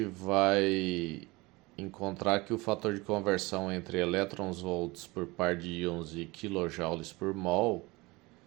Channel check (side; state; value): left; quieter; 23.0 dB